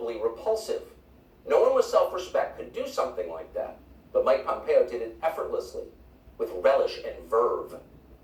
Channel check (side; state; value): both; identical; correlation 1.00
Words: repulsive. No one with self-respect could do something like that. But Mike Pompeo did it effortlessly, with relish and verve.